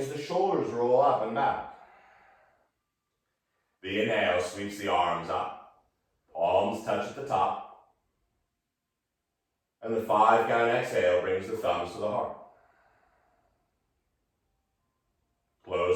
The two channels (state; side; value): identical; both; correlation 1.00